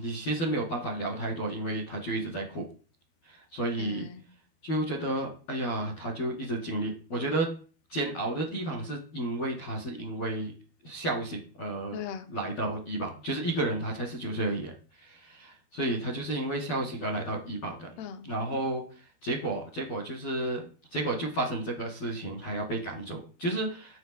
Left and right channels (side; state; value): right; late; 12 ms